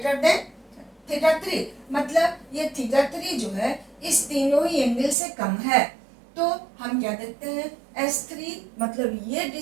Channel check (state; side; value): drops out; left; at 5.2 s